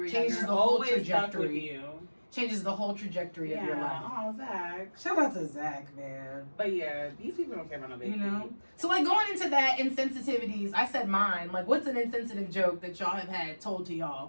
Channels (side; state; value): both; inverted; correlation -1.00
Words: Changes younger the whole always stuck with trajectory. you. Changes the whole trajectory of your life. Oh, Zach. Shout out to Zach, man. But yeah, these people don't care about no big You know? feet. So like going into that insensitivities, I said mine. Like what's an insensitive joke that y'all have had told to